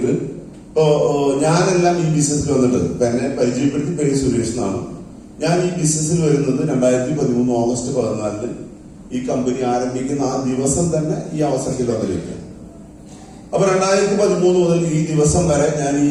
ഇപ്പോ ഞാനെല്ലാം ഈ ബിസിനസ്സിൽ വന്നിട്ട് ഇപ്പൊ എന്നെ പരിചയപ്പെടുത്തി പേര് സുരേഷ് എന്നാണ്. ഞാൻ ഈ ബിസിനസ്സിൽ വരുന്നത് 2013 ഓഗസ്റ്റ് 14 ഈ കമ്പനി ആരംഭിക്കുന്ന ആ ദിവസം തന്നെ ഈ അവസരത്തിൽ വന്നിരിക്കുക. അപ്പൊ 2013 മുതൽ ഈ ദിവസം വരെ ഞാൻ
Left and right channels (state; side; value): identical; both; correlation 1.00